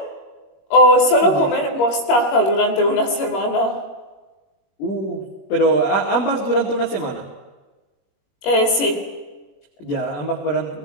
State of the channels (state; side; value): late; right; 21 ms